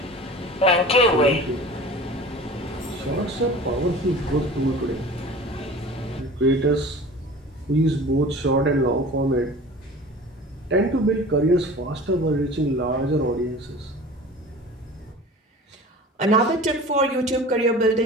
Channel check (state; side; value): normal; both; correlation 0.39